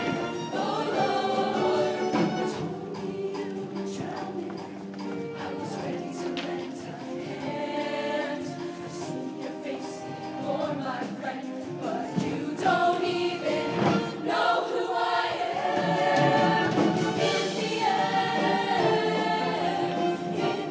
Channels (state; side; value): identical; both; correlation 1.00